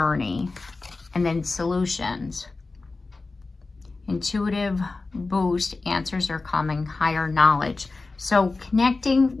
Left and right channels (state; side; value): quieter; right; 3.6 dB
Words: And then solutions. Intuitive boost. Answers are coming. Higher knowledge. So connecting